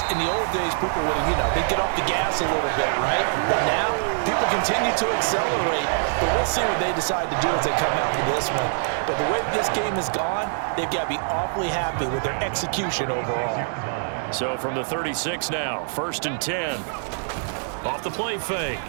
in the old days, people would, they'd get off the gas a little bit, right? But now, people continue to accelerate, but we'll see what they decide to do as they come out to this one. But the way this game has gone, they've got to be awfully happy with their execution overall. So from the 36 now, 1st and 10. Off the play fake.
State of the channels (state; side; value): silent; left; digital silence